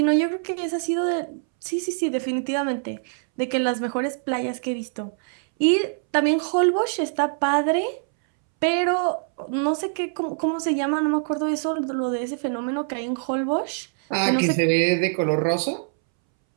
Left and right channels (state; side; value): silent; left; 63 dB below the other